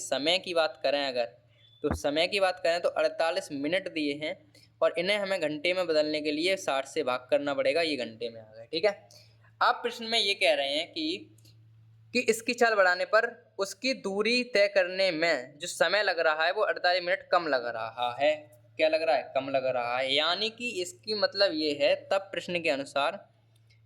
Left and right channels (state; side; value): identical; both; correlation 1.00